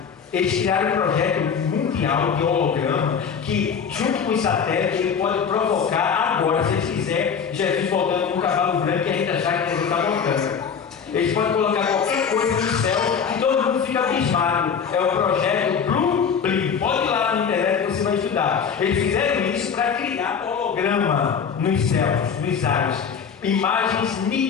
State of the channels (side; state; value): right; quieter; 6.7 dB